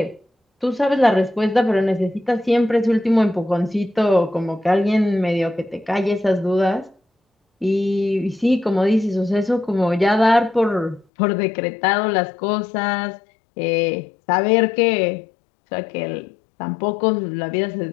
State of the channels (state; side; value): drops out; right; at 11.1 s